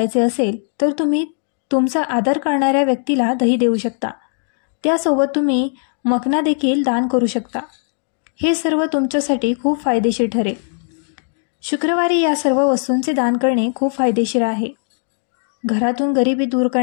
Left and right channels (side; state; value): right; silent; digital silence